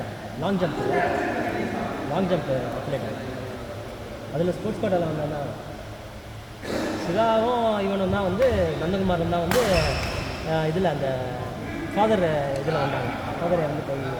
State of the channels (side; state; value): both; identical; correlation 1.00